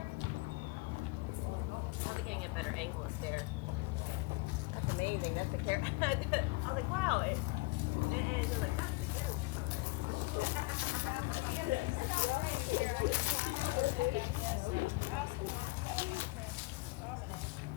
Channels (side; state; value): right; quieter; 24.3 dB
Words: Now they're getting a better angle up there. That's amazing. That's the carriage. I was like, wow. It was like, that's the carriage.